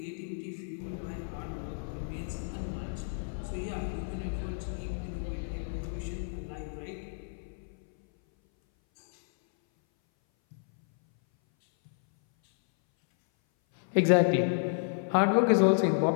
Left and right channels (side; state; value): right; silent; 57 dB below the other